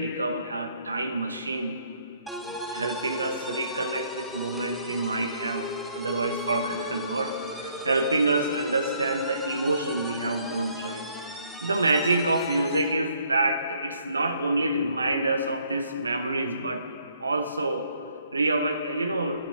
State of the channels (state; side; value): inverted; both; correlation -0.66